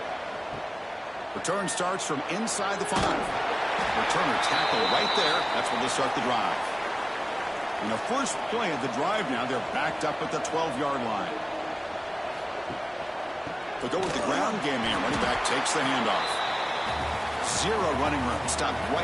Return starts from inside the 5. Returner tackle right there. That's where they start the drive. In the first play of the drive now, they're backed up at the 12-yard line. They'll go with the ground game here. Running back takes the handoff. 0 running room. Stopped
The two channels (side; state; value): both; identical; correlation 1.00